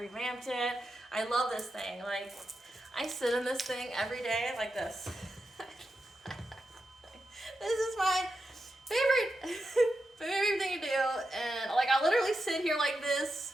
it. I love this thing. Like, I sit in this thing every day like this. This is my favorite thing to do, and like I literally sit here like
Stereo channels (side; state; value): both; normal; correlation 0.88